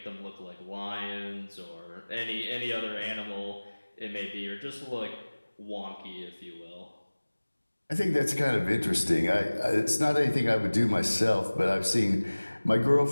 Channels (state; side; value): inverted; both; correlation -1.00